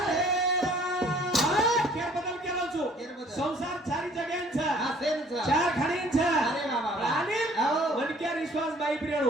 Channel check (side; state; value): both; normal; correlation 0.56